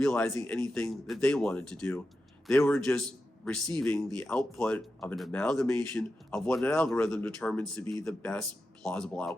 anything that they wanted to do. They were just receiving the output of an amalgamation of what an algorithm determines to be the best plausible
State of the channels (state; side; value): normal; both; correlation 0.90